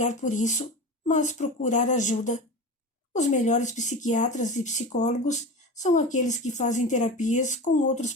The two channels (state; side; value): normal; both; correlation 0.28